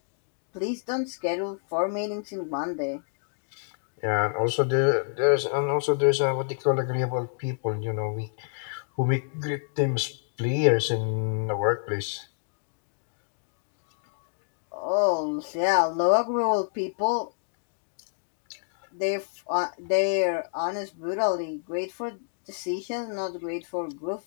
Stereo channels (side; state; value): right; silent; digital silence